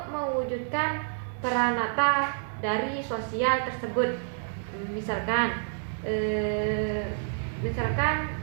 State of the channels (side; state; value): left; silent; digital silence